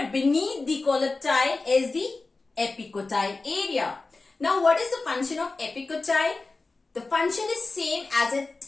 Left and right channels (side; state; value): right; quieter; 3.6 dB